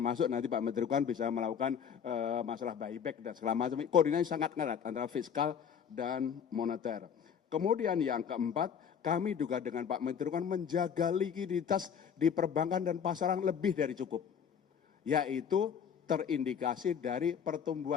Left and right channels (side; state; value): right; quieter; 7.7 dB